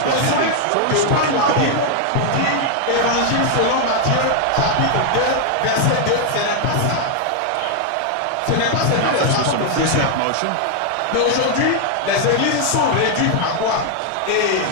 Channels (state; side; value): different; both; correlation 0.00